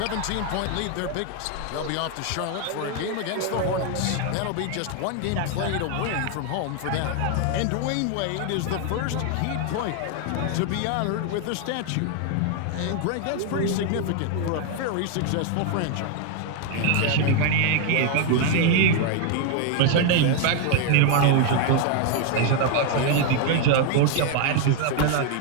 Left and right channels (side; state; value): both; different; correlation 0.00